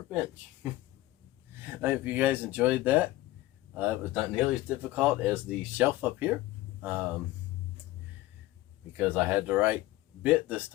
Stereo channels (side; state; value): right; quieter; 17.2 dB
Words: I hope you guys enjoyed that. It was not nearly as difficult as the shelf up here, because I had the right bit this